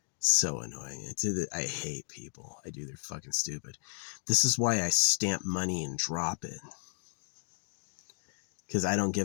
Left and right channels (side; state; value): right; silent; 56 dB below the other